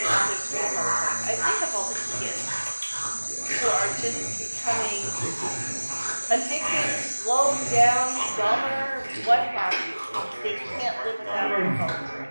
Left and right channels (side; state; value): both; inverted; correlation -1.00